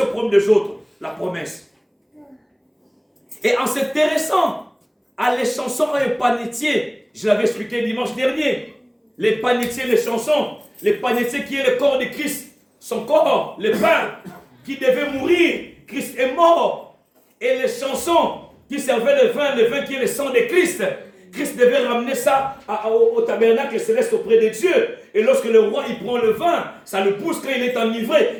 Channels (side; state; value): both; identical; correlation 1.00